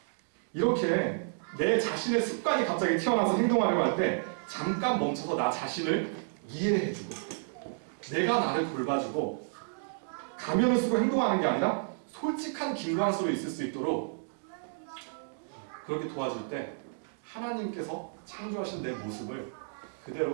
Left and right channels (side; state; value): left; silent; digital silence